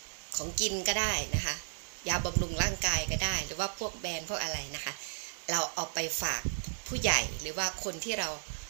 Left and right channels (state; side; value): silent; left; digital silence